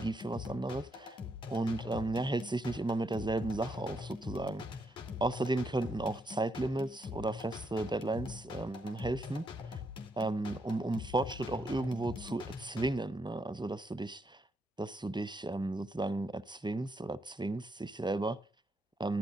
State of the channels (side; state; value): both; normal; correlation 0.77